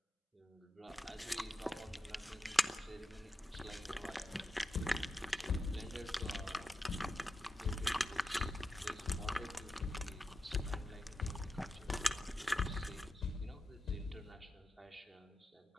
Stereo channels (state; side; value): normal; both; correlation 0.90